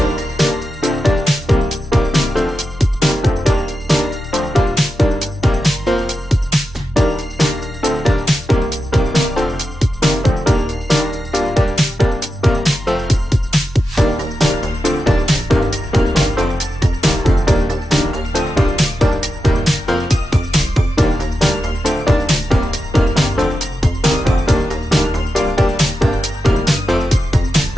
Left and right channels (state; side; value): normal; both; correlation 0.89